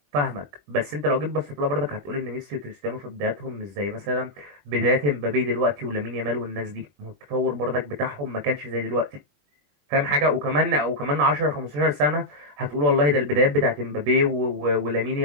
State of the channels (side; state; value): left; late; 21 ms